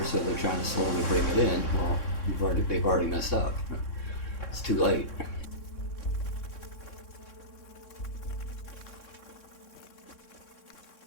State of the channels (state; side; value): late; right; 3.6 ms